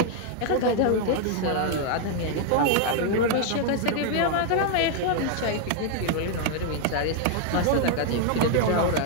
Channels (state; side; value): different; both; correlation 0.00